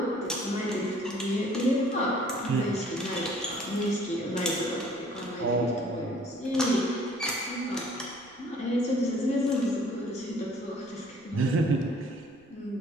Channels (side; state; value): right; noise; rumble, 29 dB below the sound